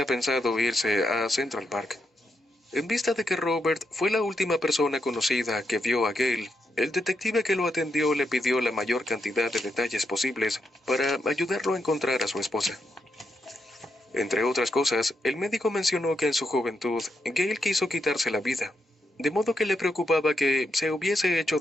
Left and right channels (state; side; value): normal; both; correlation 0.83